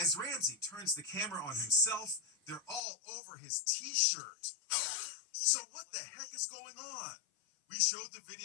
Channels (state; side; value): drops out; right; at 2.8 s